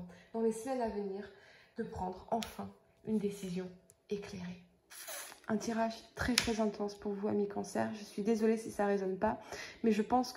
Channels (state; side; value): identical; both; correlation 1.00